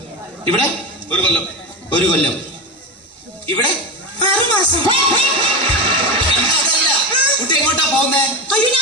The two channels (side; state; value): both; normal; correlation 0.19